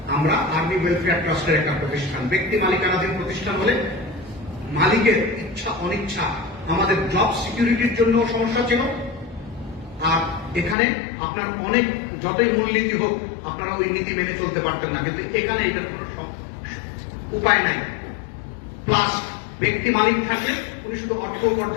আমরা আর্মি ওয়েলফেয়ার ট্রাস্টের একটা প্রতিষ্ঠান। ব্যক্তি মালিকানাধীন প্রতিষ্ঠান হলে মালিকের ইচ্ছা অনিচ্ছা আমাদের জব সিকিউরিটির জন্য সমস্যা ছিল। আর এখানে আপনার অনেক যতই মূলনীতি হোক আপনারা ওই নীতি মেনে চলতে পারতেন না, কিন্তু এখানে এটার কোনো উপায় নাই। প্লাস ব্যক্তি মালিক থাকলে উনি শুধু অর্থ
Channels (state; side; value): drops out; right; at 10.8 s